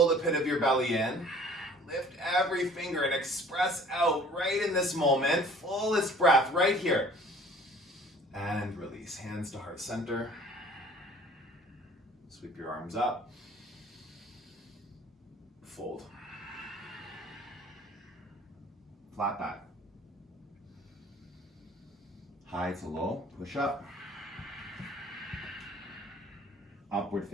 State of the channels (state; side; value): normal; both; correlation 0.51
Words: the pit of your belly in. Lift every finger and express out right in this moment. Fullest breath right here. And release. Hands to heart center. Sweep your arms up. Fold. Flat back. High to low. Push up. Upward